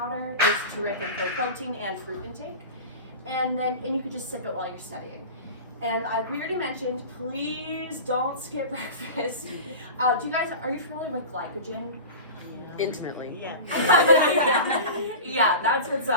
is terrific for protein and fruit intake. And you could just sip it while you're studying. And we already mentioned, please don't skip breakfast. Are you familiar with glycogen? Intimately. Yeah. Yeah, that's what's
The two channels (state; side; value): inverted; both; correlation -0.32